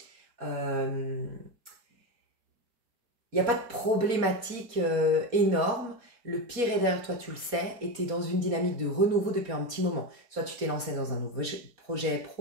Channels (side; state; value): left; late; 4.2 ms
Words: Il n'y a pas de problématique énorme. Le pire est derrière toi, tu le sais, et tu es dans une dynamique de renouveau depuis un petit moment. Soit tu t'es lancé dans un nouveau projet